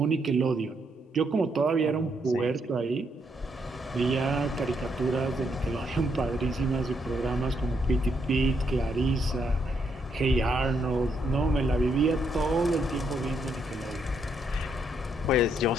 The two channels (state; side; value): normal; both; correlation 0.76